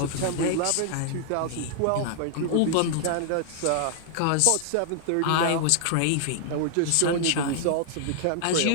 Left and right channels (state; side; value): different; both; correlation -0.01